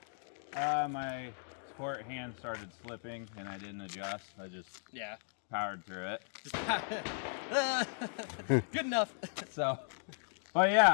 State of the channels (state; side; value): silent; right; digital silence